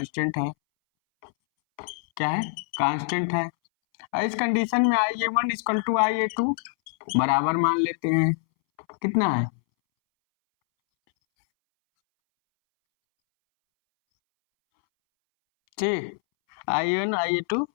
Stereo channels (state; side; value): silent; right; 62 dB below the other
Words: है, क्या है, कांस्टेंट है। इस कंडीशन में IA1 इक्वल टू IA2 बराबर मान लेते हैं, कितना है, ठीक, IA1 IA2